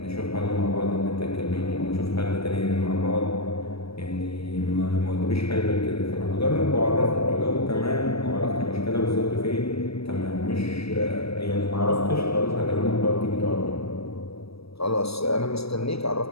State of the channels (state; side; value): late; right; 0.77 ms